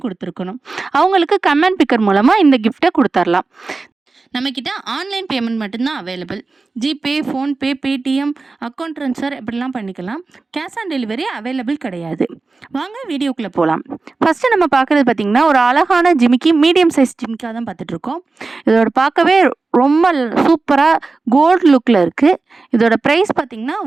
கொடுத்துருக்கணும். அவங்களுக்கு கமெண்ட் பிக்கர் மூலமாக இந்த கிஃப்ட்டை கொடுத்துர்லாம். நம்மக்கிட்ட ஆன்லைன் பேமெண்ட் மட்டும்தான் available. GPay, PhonePe, Paytm, account transfer இப்படிலாம் பண்ணிக்கலாம். கேஷ் ஆன் டெலிவரி அவைலபிள் கிடையாது. வாங்க வீடியோக்குள்ளே போகலாம். ஃபஸ்ட்டு நம்ம பார்க்குறது பார்த்திங்கன்னா, ஒரு அழகான ஜிமிக்கி, மீடியம் சைஸ் ஜிமிக்காக தான் பார்த்துட்ருக்கோம். இதோட பார்க்கவே ரொம்ப சூப்பராக கோல்டு லுக்கில் இருக்குது. இதோட ப்ரைஸ் பார்த்திங்கன்னா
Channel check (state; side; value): quieter; left; 3.8 dB